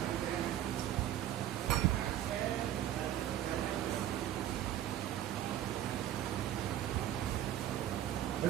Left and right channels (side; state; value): left; quieter; 11.9 dB